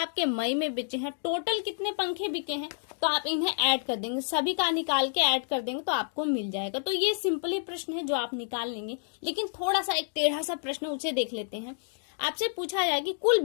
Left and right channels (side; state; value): right; silent; digital silence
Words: मई में बिके हैं। टोटल कितने पंखे बिके हैं, तो आप इन्हें ऐड कर देंगे, सभी का निकाल के ऐड कर देंगे तो आपको मिल जाएगा। तो ये सिंपली प्रश्न है जो आप निकाल लेंगे। लेकिन थोड़ा सा एक टेढ़ा सा प्रश्न, उसे देख लेते हैं। आपसे पूछा जाए कि कुल